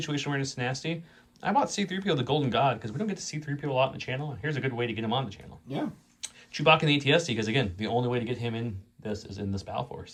Awareness, Nasty. I bought C-3PO, the Golden God, because we don't get to see 3PO a lot in the channel. And here's a good way to get him on the channel. Yeah. Chewbacca and the ATSD, because again, the only way to get him in this is in this Battle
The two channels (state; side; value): identical; both; correlation 1.00